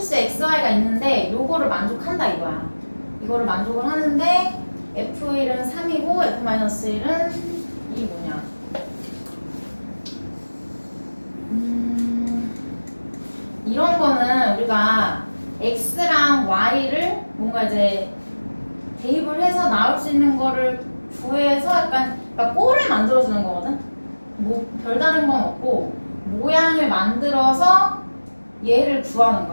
xy가 있는데 요거를 만족한다 이거야. 이거를 만족을 하는데 f1은 3이고 f-1은 이 뭐냐? 이런 거는 우리가 x랑 y를 뭔가 이제 대입을 해서 나올 수 있는 거를 구해서 약간 그러니까 꼴을 만들어주는 거거든. 뭐 별다른 건 없고 모양을 만들어서 얘를 구하는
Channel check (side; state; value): both; inverted; correlation -1.00